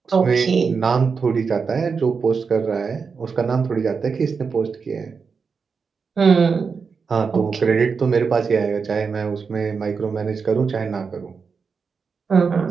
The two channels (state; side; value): quieter; left; 5.4 dB